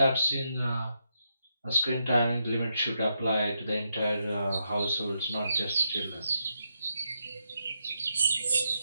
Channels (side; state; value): both; inverted; correlation -0.82